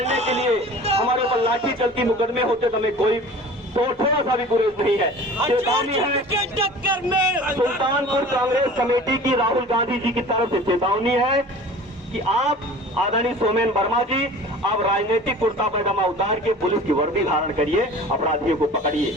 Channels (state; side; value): normal; both; correlation 0.42